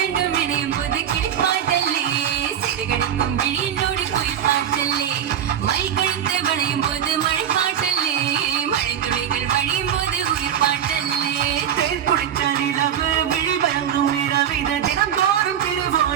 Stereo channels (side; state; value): left; quieter; 9.4 dB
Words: இணையும் போது கிளிப்பாட்டல்லே சிறுகடிக்கும் விழியிலோடி குயில் பாட்டல்லே மை கழித்து வளையும் போது மழை பாட்டல்லே மழை துளிகள் வழியும் போது உயிர் பாட்டல்லே தேன் குடிச்ச நிலவு விழிமயங்கும் இரவிது தினந்தோறும்